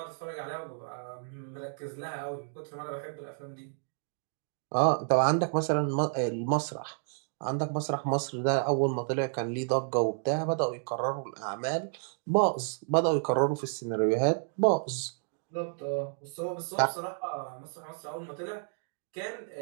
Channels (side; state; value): left; silent; 57 dB below the other